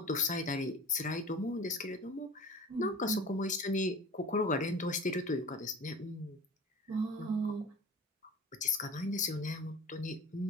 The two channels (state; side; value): normal; both; correlation 0.40